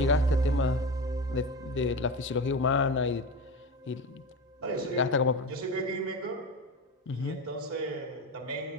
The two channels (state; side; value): normal; both; correlation 0.24